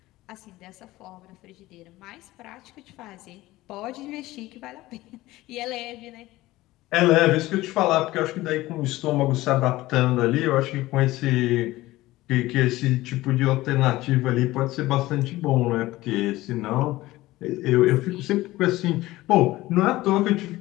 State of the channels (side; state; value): right; quieter; 17.8 dB